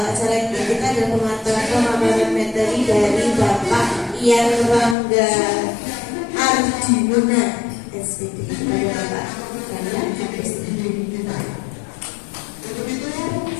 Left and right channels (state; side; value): drops out; right; at 5.0 s